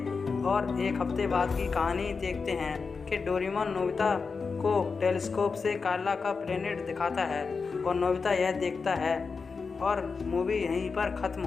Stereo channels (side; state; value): right; quieter; 4.9 dB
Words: और 1 हफ्ते बाद की कहानी देखते हैं कि डोरेमोन नोबिता को टेलीस्कोप से कार्ला का प्लेनेट दिखाता है और नोबिता यह देखता है और मूवी यहीं पर ख़त्म